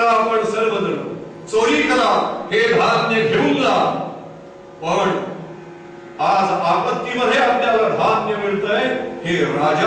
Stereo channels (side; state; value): both; identical; correlation 1.00